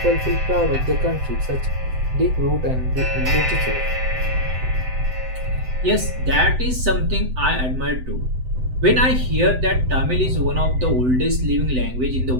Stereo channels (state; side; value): late; left; 7.9 ms